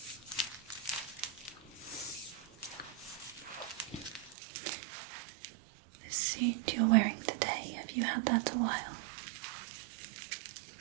The suit you're wearing today, have you had that a while?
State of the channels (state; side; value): drops out; left; at 4.4 s